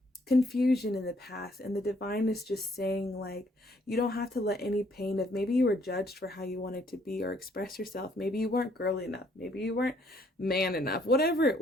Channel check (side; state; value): both; normal; correlation 0.66